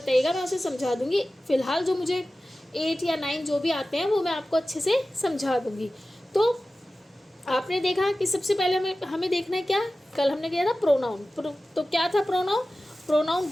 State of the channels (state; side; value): normal; both; correlation 0.95